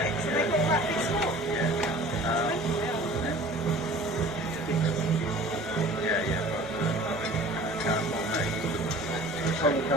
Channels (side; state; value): both; normal; correlation 0.45